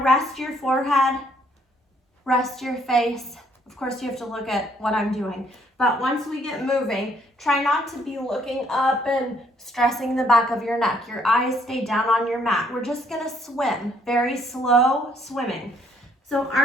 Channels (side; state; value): both; normal; correlation 0.66